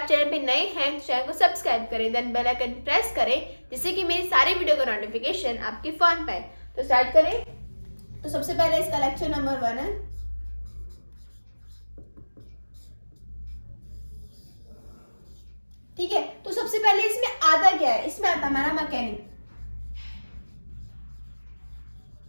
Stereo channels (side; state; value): both; inverted; correlation -1.00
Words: चैनल पे नए हैं तो चैनल को सब्सक्राइब करें, देन बेल आइकन प्रेस करें जिससे कि मेरी सारी वीडियो का नोटिफिकेशन आपके फोन पे आए। तो स्टार्ट करें। तो सबसे पहले इसका लेक्चर नंबर 1 है। ठीक है, तो सबसे पहले इसमें आता क्या है? इसमें आता हमारा